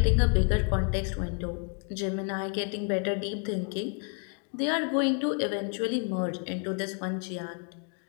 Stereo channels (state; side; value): quieter; right; 37.7 dB